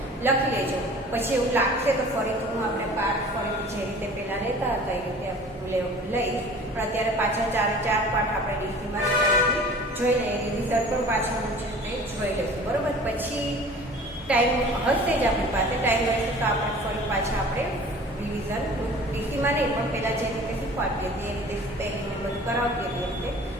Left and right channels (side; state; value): both; normal; correlation 0.45